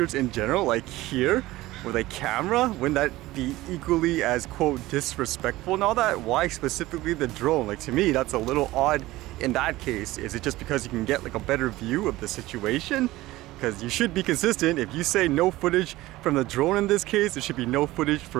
in general, like here with a camera, wouldn't that be equally as, quote, disrespectful and all that? Why specifically the drone? Like, to me, that's a little odd in that case. Is it just because you can get like a better view of the situation? Because you should be consistent. If you say no footage from the drone in this case, there should be no footage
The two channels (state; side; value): quieter; left; 17.8 dB